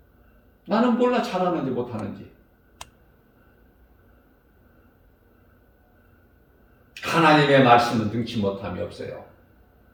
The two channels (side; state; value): both; identical; correlation 1.00